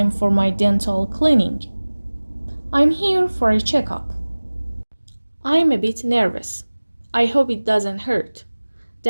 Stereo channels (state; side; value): inverted; both; correlation -1.00